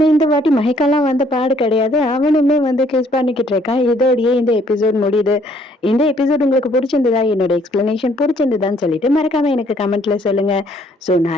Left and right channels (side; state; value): both; normal; correlation 0.63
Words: இந்த வாட்டி மயக்கம்லாம் வந்த பாடு கிடையாது. அவனுமே வந்து கிஸ் பண்ணிக்கிட்டு இருக்கான். இதோடயே இந்த எபிசோட் முடியுது. இந்த எபிசோட் உங்களுக்கு புடிச்சிருந்ததா? என்னோட எக்ஸ்பிளனேஷன் புடிச்சிருந்ததான்னு சொல்லிட்டு மறக்காம எனக்கு கமெண்ட்ல சொல்லுங்க. ஸோ